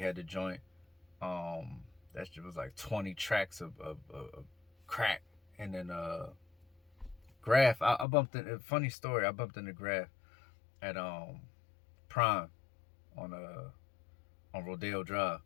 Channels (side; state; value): right; drops out; at 8.1 s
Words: the joint. That shit was like 20 tracks of crack. And then Grafh, I bumped in, funny story, I bumped into Grafh at Prime on Rodeo Drive,